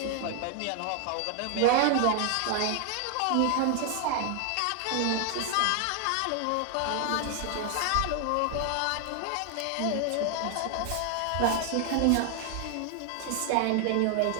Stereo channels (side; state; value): both; different; correlation 0.00